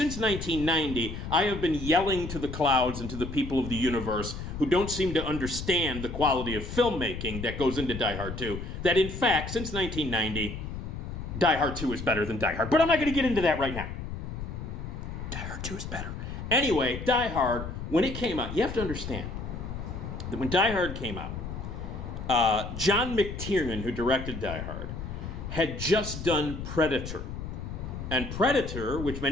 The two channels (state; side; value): noise; left; rumble, 7 dB below the sound